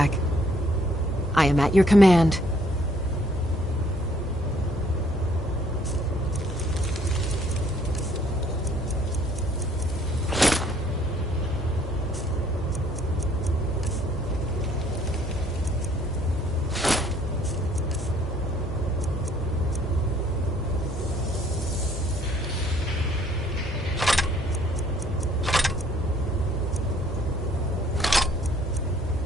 I am at your command.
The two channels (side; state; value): both; normal; correlation 0.62